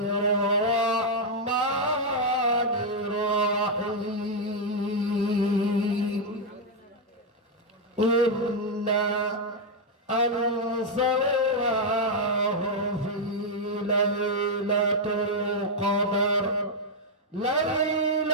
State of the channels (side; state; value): both; normal; correlation -0.01